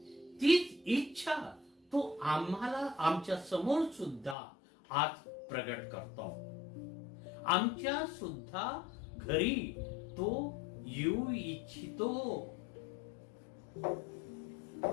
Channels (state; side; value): drops out; right; at 4.4 s